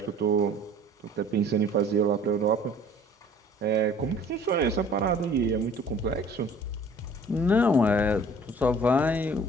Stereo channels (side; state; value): both; normal; correlation 0.51